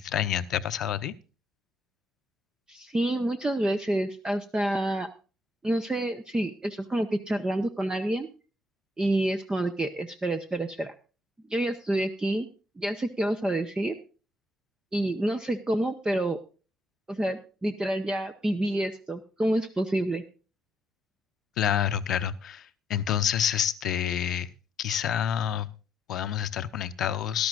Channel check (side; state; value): both; normal; correlation 0.74